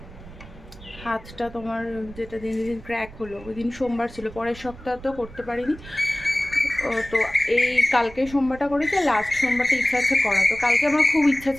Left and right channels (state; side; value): noise; right; rumble, 18 dB below the sound